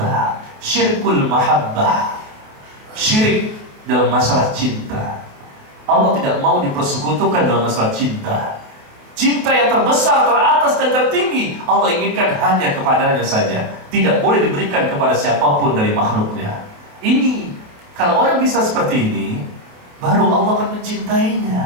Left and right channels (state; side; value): late; left; 28 ms